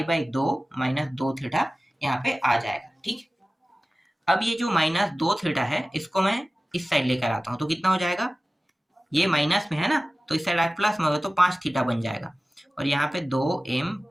बाई 2 माइनस 2 थीटा यहाँ पे आ जाएगा। ठीक, अब ये जो माइनस 2 थीटा है इसको मैं इस साइड लेकर आता हूँ, तो कितना हो जाएगा, ये माइनस में है ना, तो इस साइड प्लस में होगा तो 5 थीटा बन जाएगा, और यहाँ पे 2m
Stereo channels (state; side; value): normal; both; correlation 0.97